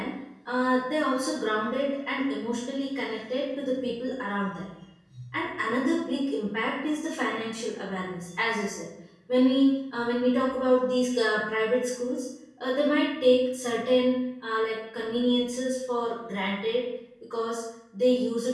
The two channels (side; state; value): both; identical; correlation 1.00